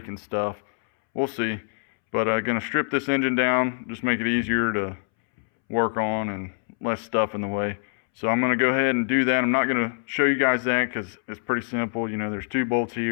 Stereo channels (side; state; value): right; silent; 62 dB below the other